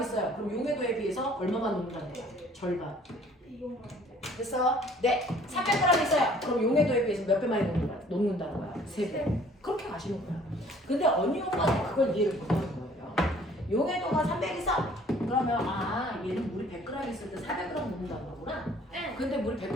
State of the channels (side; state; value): both; normal; correlation 0.55